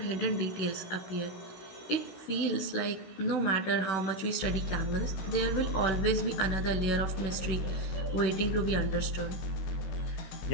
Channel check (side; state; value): right; late; 16 ms